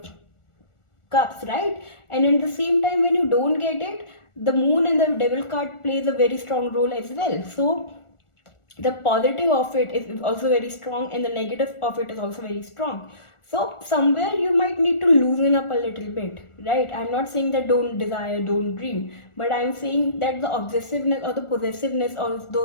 cups, right? And at the same time, when you don't get it, the moon and the devil card plays a very strong role as well. So the positive of it is also very strong, and the negative of it is also very strong. So somewhere you might need to loosen up a little bit, right? I'm not saying that don't desire, don't dream, but I'm saying that the obsessiveness or the possessiveness of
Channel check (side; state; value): right; late; 1.4 ms